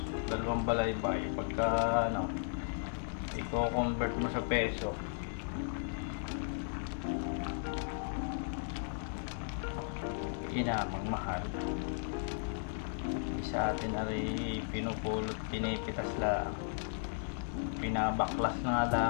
Dalawang balaybay pagka i-convert mo sa peso, inamang mahal. Sa atin ay pinupulot, pinipitas lang, pinabaklas na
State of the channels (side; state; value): right; silent; digital silence